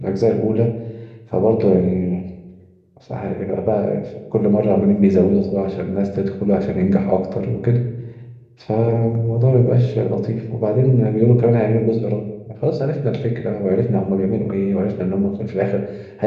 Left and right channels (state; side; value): identical; both; correlation 1.00